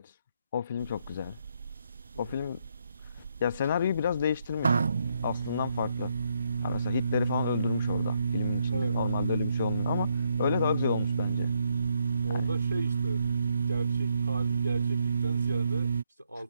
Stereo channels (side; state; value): both; inverted; correlation -0.76